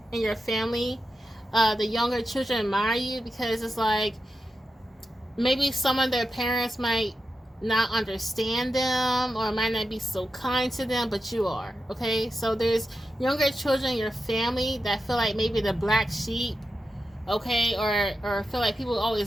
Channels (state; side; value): normal; both; correlation 0.89